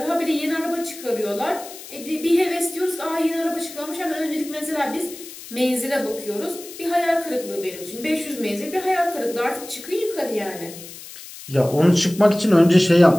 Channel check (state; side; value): noise; left; hiss, 15 dB below the sound